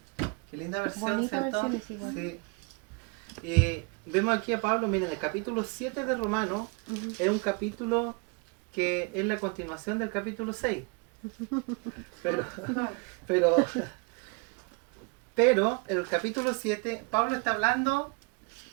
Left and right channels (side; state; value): left; quieter; 31.3 dB